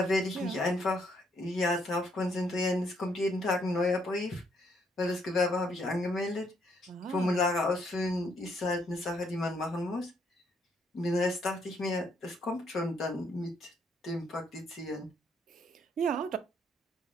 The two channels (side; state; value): both; normal; correlation 0.71